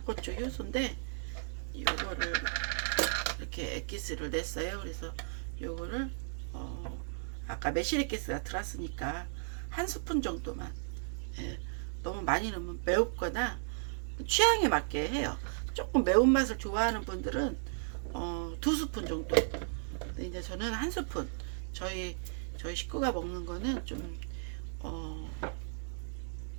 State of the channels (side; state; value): left; silent; digital silence